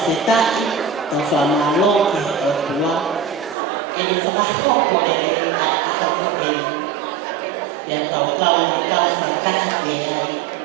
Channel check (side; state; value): left; drops out; at 3.6 s